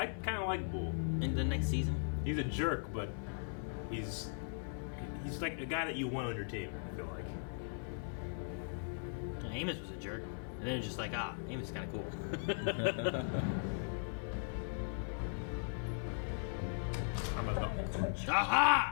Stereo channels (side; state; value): right; silent; 52 dB below the other